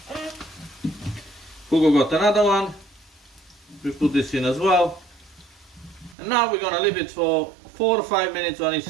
Hugo got another one. We put this in as well. And now we're gonna leave it for 4 or 5 minutes on each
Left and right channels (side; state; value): left; drops out; at 6.2 s